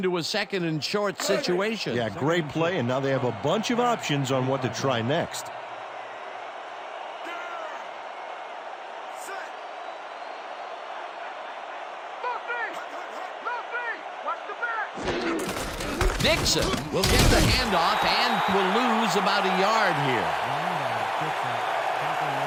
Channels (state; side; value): identical; both; correlation 1.00